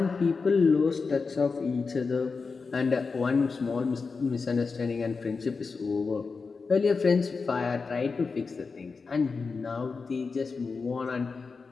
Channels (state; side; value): quieter; right; 4.7 dB